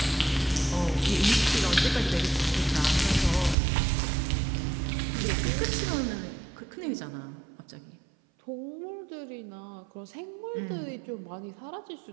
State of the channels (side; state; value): left; drops out; at 3.6 s